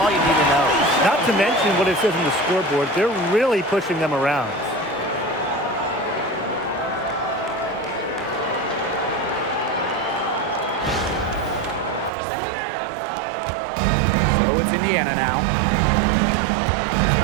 you need to know. Not to mention what it says on the scoreboard, they're really pushing them around. So it's Indiana now.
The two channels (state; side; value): drops out; left; at 12.1 s